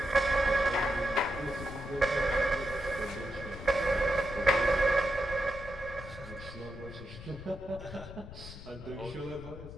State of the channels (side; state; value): left; noise; rumble, 13 dB below the sound